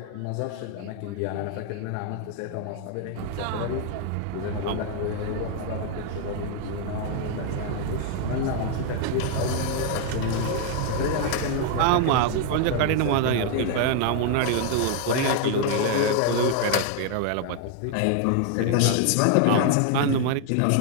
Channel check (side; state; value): both; different; correlation 0.00